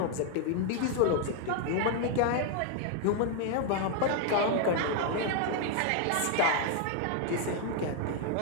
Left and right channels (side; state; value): both; different; correlation 0.00